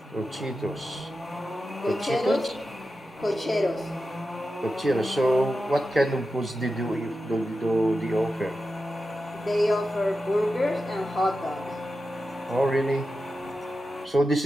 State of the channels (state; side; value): normal; both; correlation 0.91